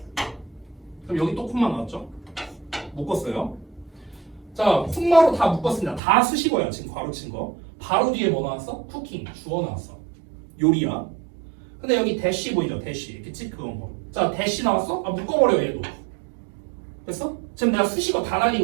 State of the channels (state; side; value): drops out; left; at 6.0 s